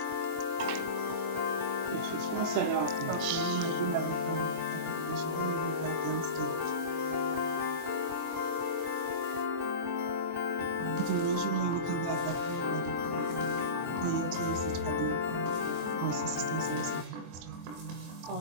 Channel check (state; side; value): late; left; 24 ms